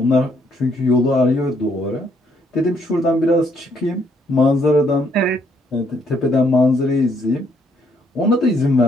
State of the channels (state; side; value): normal; both; correlation 0.70